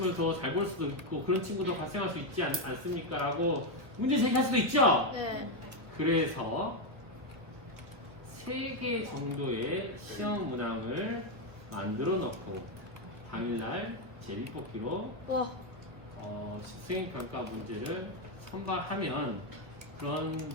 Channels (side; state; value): left; late; 1.3 ms